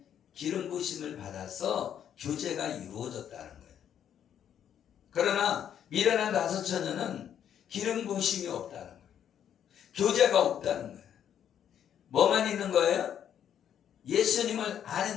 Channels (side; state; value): right; quieter; 9.4 dB